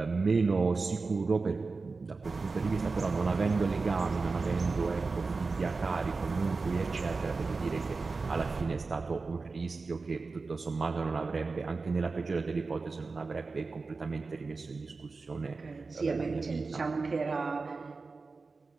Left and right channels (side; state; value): left; quieter; 4.1 dB